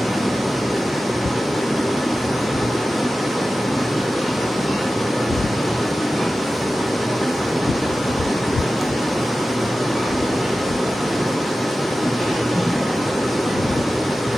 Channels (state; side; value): normal; both; correlation 0.94